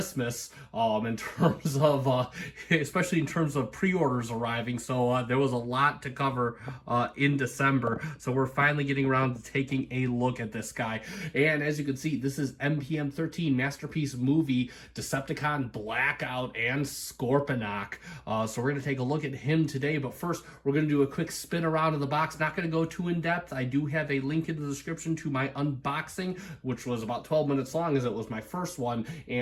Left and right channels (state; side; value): identical; both; correlation 1.00